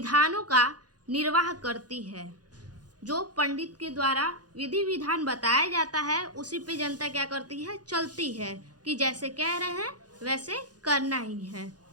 का निर्वाह करती है। जो पंडित के द्वारा विधि विधान बताया जाता है उसी पे जनता क्या करती है, चलती है कि जैसे कह रहे हैं वैसे करना ही है।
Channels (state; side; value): late; left; 0.69 ms